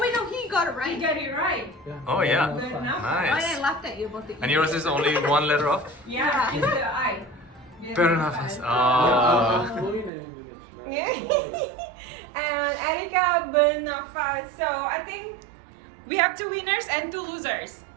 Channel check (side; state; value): left; drops out; at 10.1 s